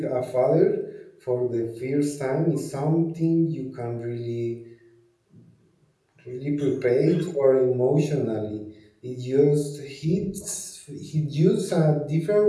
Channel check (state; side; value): identical; both; correlation 1.00